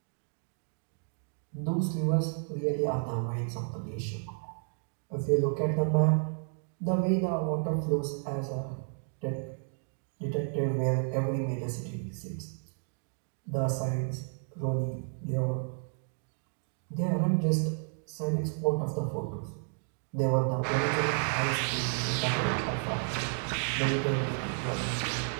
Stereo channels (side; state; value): left; silent; 56 dB below the other